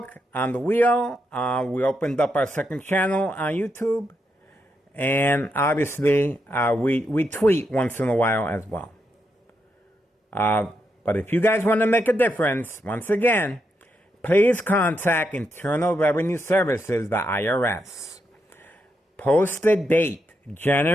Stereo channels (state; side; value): normal; both; correlation 0.82